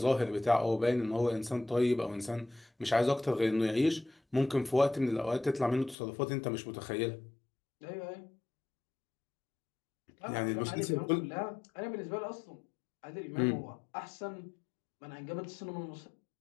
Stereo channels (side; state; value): right; drops out; at 6.0 s